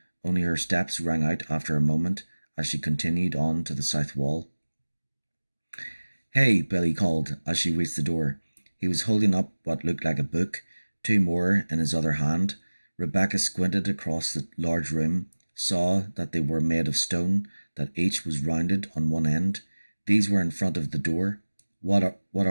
only her steps rang out after a moment as she continued on to the south wall. Hey, Billy called as she reached the door. He was holding up what looked like a book, 2 more in his other hand. Rebecca squinted across the large room, saw that they were made of stone, that each was rounded on one end. These were in front of the door. What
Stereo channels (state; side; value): inverted; both; correlation -1.00